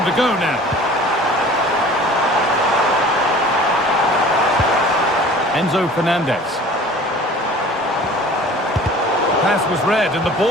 to go now. Enzo Fernandez. Pass was read and the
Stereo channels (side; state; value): both; normal; correlation 0.45